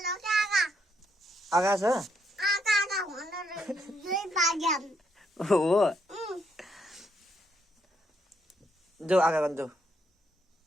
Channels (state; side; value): normal; both; correlation 0.75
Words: आगा छ हो जाऊ आगा गर्नु जाऊ